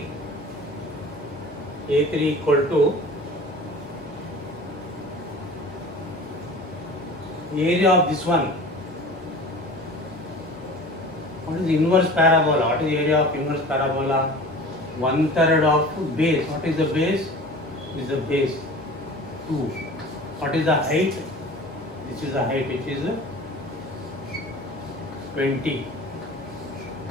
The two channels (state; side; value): normal; both; correlation 0.40